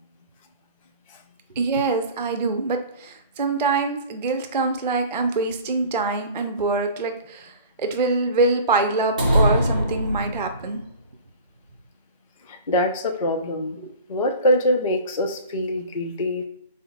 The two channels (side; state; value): both; inverted; correlation -0.41